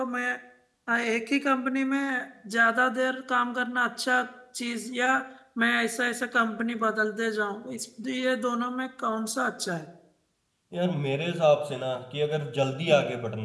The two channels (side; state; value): both; identical; correlation 1.00